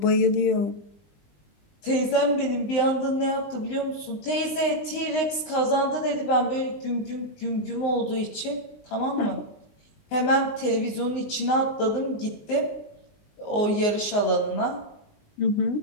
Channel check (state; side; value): late; right; 19 ms